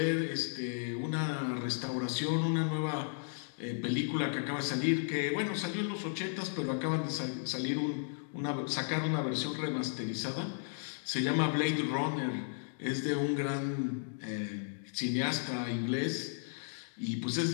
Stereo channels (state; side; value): silent; right; digital silence